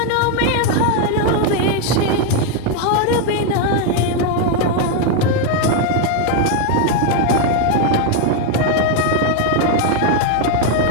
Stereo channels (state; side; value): different; both; correlation 0.01